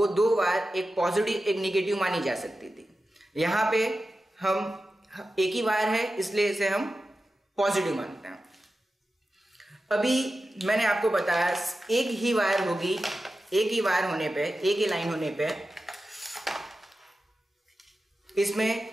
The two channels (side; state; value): both; normal; correlation 0.93